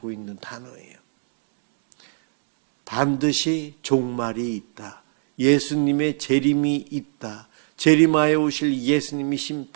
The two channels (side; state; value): left; silent; 63 dB below the other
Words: 있는 단어예요. 반드시 종말이 있다. 예수님의 재림이 있다. 재림하여 오실 예수님이